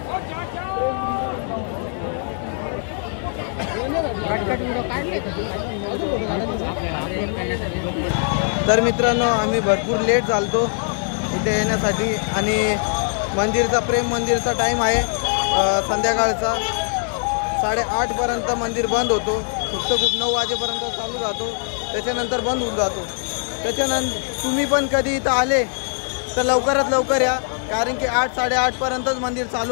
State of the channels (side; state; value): right; silent; 59 dB below the other